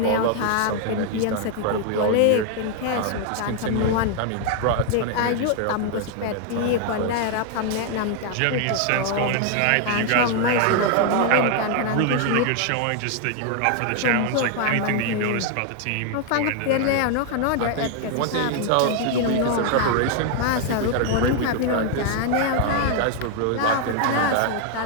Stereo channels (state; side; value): different; both; correlation 0.00